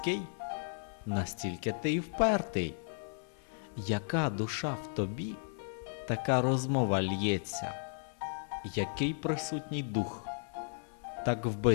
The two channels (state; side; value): silent; right; 55 dB below the other